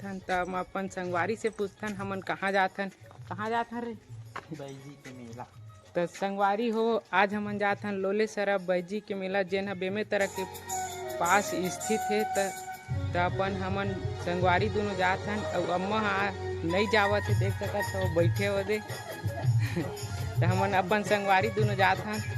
तो हम अपन संगवारी से पूछथन हमन कहाँ जाथन रे बैजी के मेला। तो संगवारी हो आज हमन जाथन लोले सरा बैजी के मेला जेन बेमे तरह के पास स्थित है। तो अपन हमन संगवारी दोनों जाथन और अम्मा नहीं जावत है देख सकत हो बैठे हो दे तो हमन अपन संगवारी दोनों जाथन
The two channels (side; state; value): both; identical; correlation 1.00